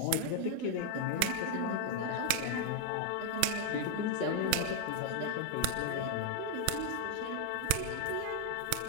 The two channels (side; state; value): both; different; correlation 0.00